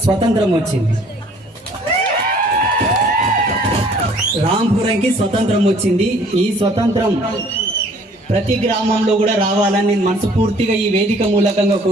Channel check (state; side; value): normal; both; correlation 0.56